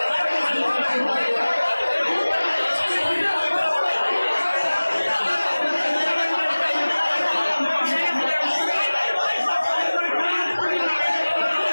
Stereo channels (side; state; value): both; inverted; correlation -1.00